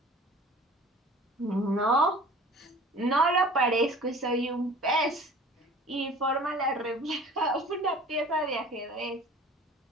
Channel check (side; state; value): both; normal; correlation 0.45